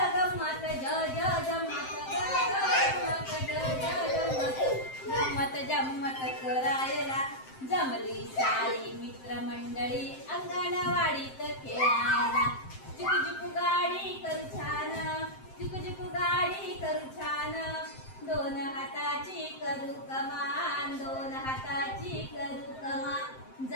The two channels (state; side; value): late; right; 7.7 ms